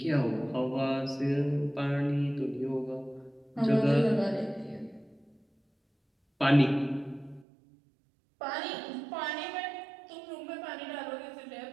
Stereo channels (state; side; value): drops out; left; at 7.5 s